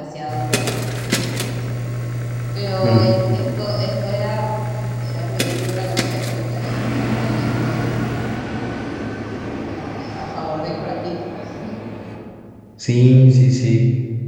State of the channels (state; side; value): identical; both; correlation 1.00